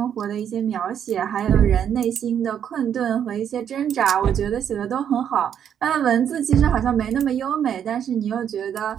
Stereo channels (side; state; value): left; quieter; 8.9 dB